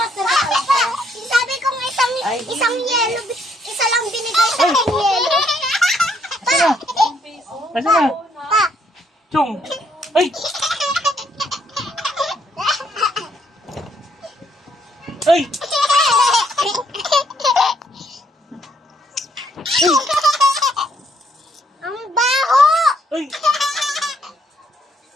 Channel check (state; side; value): normal; both; correlation 0.70